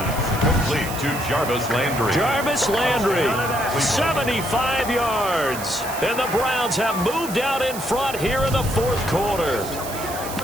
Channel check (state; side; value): noise; right; hiss, 10 dB below the sound